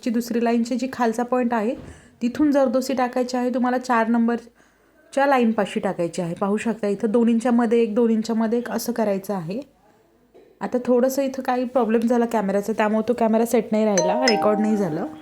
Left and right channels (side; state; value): both; identical; correlation 1.00